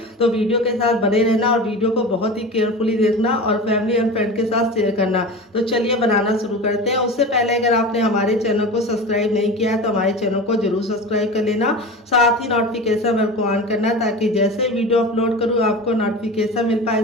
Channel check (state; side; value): normal; both; correlation 0.31